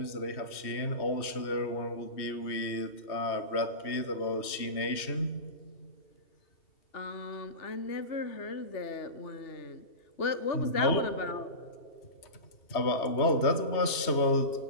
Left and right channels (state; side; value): late; right; 2.7 ms